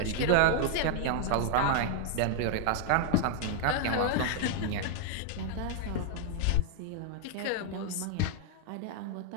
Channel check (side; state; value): both; different; correlation 0.00